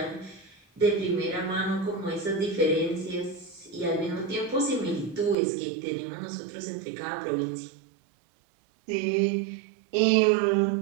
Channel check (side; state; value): left; drops out; at 5.4 s